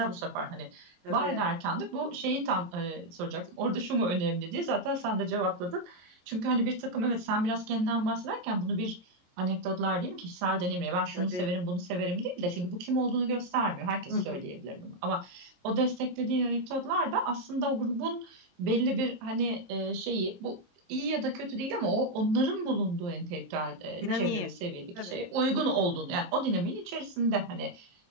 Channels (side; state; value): left; late; 23 ms